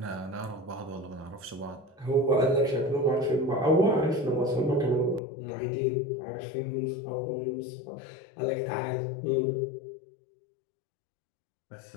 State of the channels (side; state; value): right; drops out; at 5.2 s